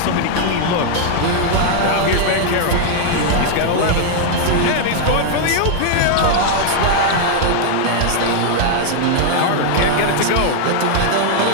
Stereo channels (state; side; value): different; both; correlation 0.00